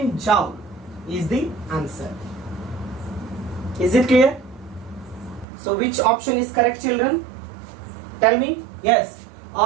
joule is the answer. Is it clear? So which option is correct, children? Tell me. Yes.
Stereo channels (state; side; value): drops out; left; at 5.5 s